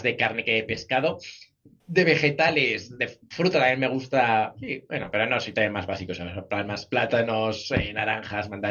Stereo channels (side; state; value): both; identical; correlation 1.00